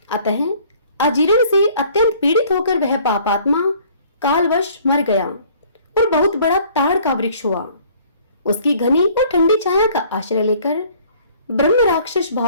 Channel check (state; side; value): inverted; both; correlation -0.56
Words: अतः अजीर्ण से अत्यंत पीड़ित होकर वह पापात्मा कालवश मर गया और बहुत बड़ा ताड़ का वृक्ष हुआ। उसकी घनी और ठंडी छाया का आश्रय लेकर ब्रह्म राक्षस